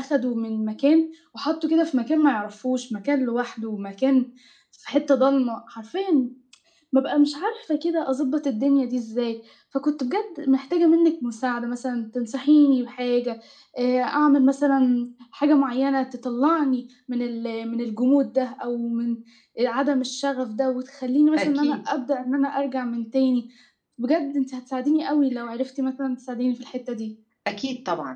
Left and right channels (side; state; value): both; identical; correlation 1.00